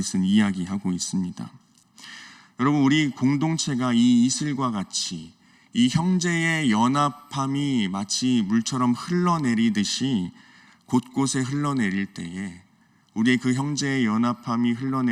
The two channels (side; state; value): both; identical; correlation 1.00